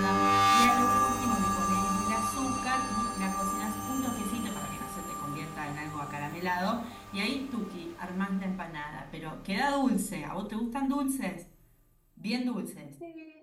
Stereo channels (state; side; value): identical; both; correlation 1.00